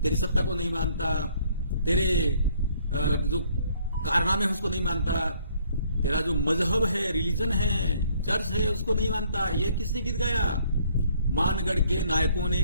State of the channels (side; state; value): both; inverted; correlation -0.63